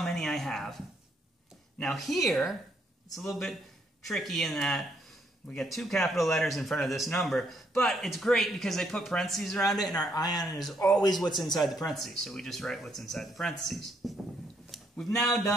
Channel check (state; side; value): normal; both; correlation 0.72